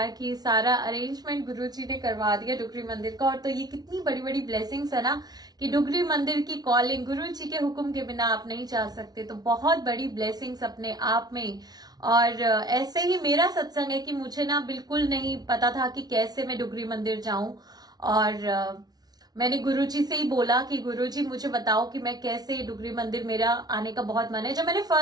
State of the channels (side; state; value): left; late; 0.19 ms